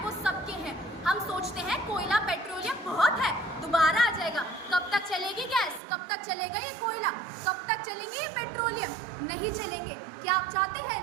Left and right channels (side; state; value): left; drops out; at 5.8 s